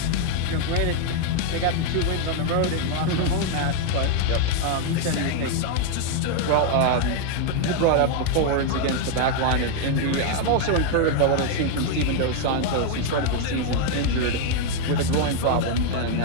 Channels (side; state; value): both; different; correlation 0.00